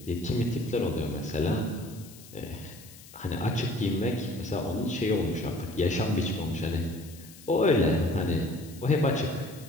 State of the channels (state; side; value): noise; left; hiss, 20 dB below the sound